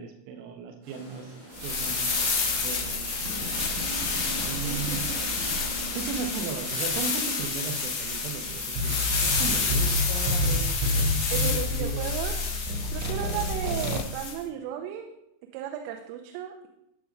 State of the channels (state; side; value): late; left; 39 ms